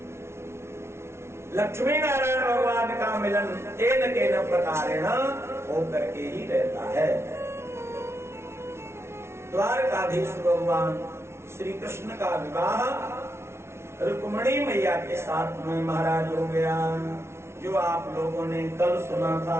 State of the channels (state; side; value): late; left; 0.13 ms